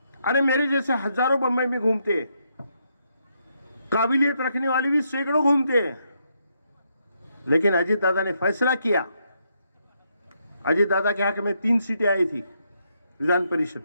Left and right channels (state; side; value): inverted; both; correlation -0.77